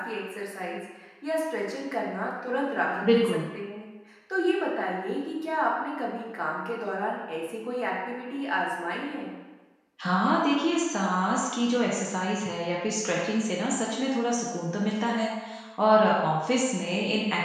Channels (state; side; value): identical; both; correlation 1.00